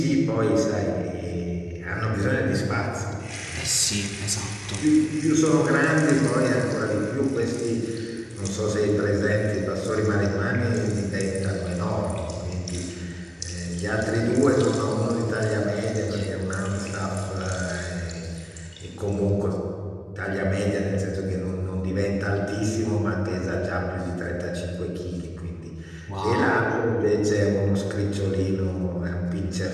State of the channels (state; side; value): identical; both; correlation 1.00